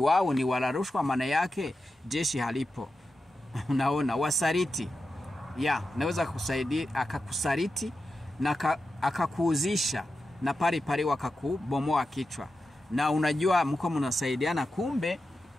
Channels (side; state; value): both; normal; correlation 0.90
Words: ni wala rushwa, maana yake jeshi halipo. Unaona, wasariti. Naweza kusaidia akakusariti na akakuuzisha, na pale wakakubomoa kichwa. Na unajua mko mnasaidiana, kumbe